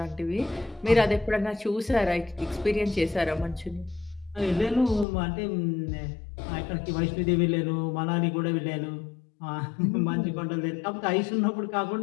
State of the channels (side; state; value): right; drops out; at 5.1 s